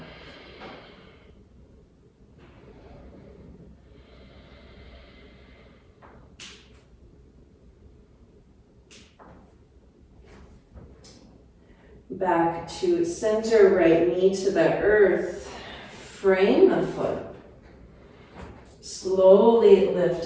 Back to center, right knee to the earth. Frame the foot. Slowly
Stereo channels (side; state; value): both; identical; correlation 1.00